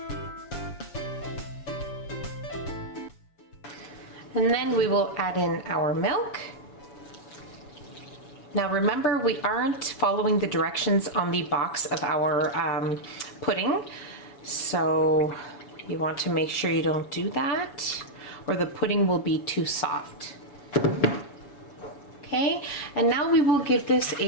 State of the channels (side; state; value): right; late; 7.0 ms